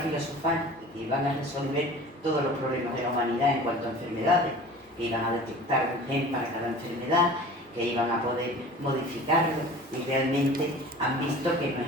que iban a resolver todos los problemas de la humanidad en cuanto a enfermedades, que iban a detectar un gen para cada enfermedad, que iban a poder modificarlo, y realmente han visto que no es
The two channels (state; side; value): normal; both; correlation 0.41